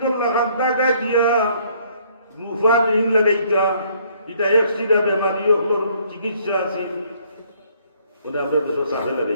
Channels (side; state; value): both; inverted; correlation -0.64